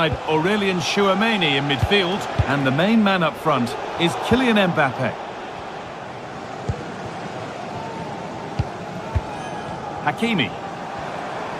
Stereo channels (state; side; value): identical; both; correlation 1.00